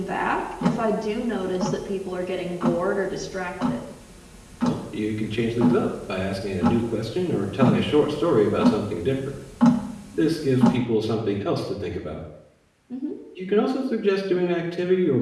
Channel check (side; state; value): both; identical; correlation 1.00